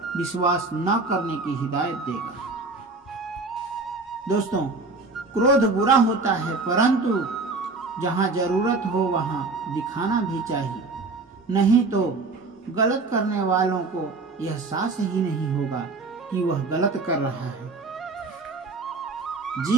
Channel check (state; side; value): quieter; left; 3.6 dB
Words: विश्वास न करने की हिदायत देगा। दोस्तों, क्रोध बुरा होता है, परंतु जहाँ जरूरत हो वहाँ दिखाना भी चाहिए, नहीं तो गलत करने वालों को यह एहसास ही नहीं होगा कि वह गलत कर रहा है।